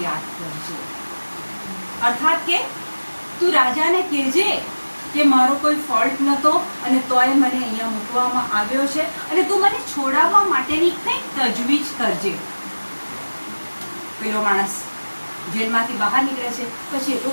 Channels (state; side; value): inverted; both; correlation -1.00